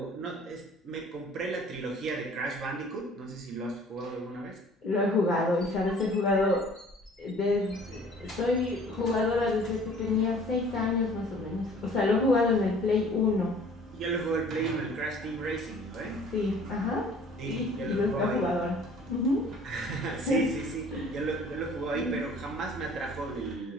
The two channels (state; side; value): normal; both; correlation 0.52